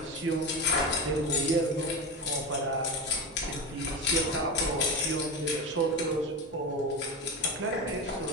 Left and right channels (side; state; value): both; normal; correlation 0.22